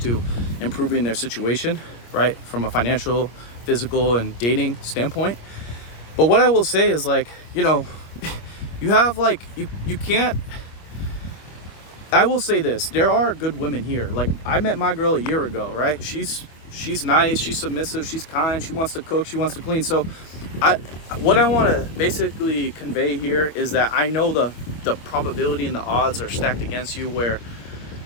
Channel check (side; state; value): right; late; 25 ms